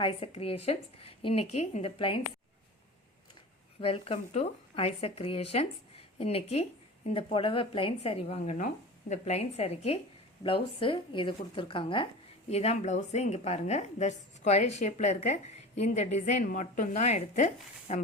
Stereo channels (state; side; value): normal; both; correlation 0.35